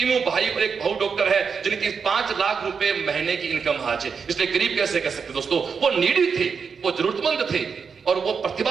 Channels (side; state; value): left; quieter; 5.9 dB